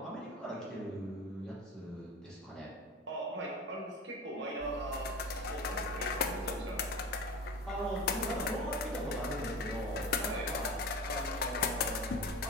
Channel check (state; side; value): normal; both; correlation 0.31